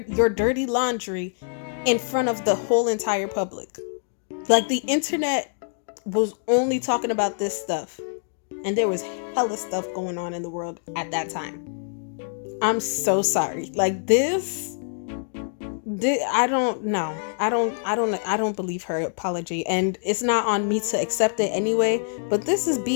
dirty laundry in front of the whole entire public. Like, the internet was only talking about this stuff. And there was hella stuff going on in the world at that time. I'm so sorry. Like, I don't know. I don't believe her apology, and it's not on me to accept it anyway. But this is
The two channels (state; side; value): silent; right; digital silence